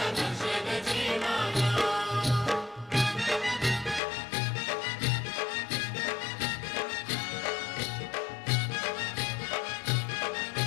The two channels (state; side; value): drops out; right; at 4.0 s